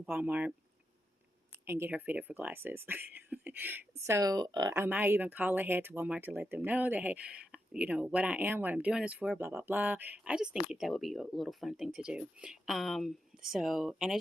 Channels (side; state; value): both; normal; correlation 0.86